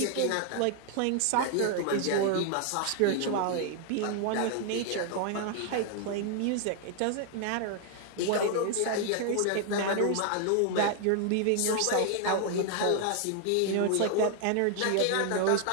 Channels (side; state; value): both; different; correlation 0.00